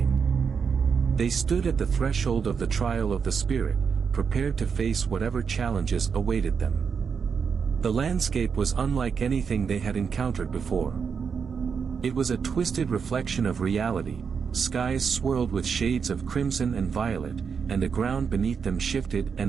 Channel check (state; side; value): quieter; left; 6.2 dB